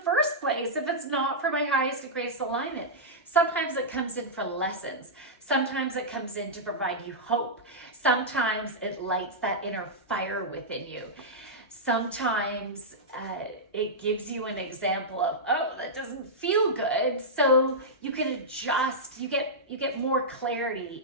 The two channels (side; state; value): both; normal; correlation -0.10